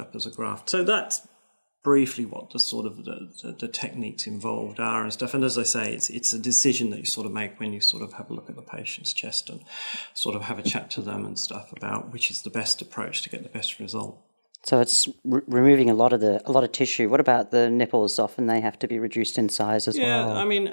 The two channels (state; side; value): inverted; both; correlation -1.00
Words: as a graft. So that's briefly what the sort of the techniques involved are and stuff. And as I say, it's a decision that you sort of make when you sort of have a look at the patient's chest and sort of have a chat to them and stuff about which is the best approach to get the best result. So it's removing a lot of tissue. What about the nipples? Often they have to be reduced in size as well. Yeah, I mean,